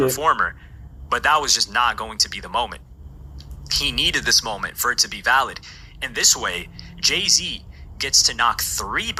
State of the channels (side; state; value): both; identical; correlation 1.00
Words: but that was just not going to be the moment. He needed this moment for it to be valid. And this way, Jay-Z gets to knock 3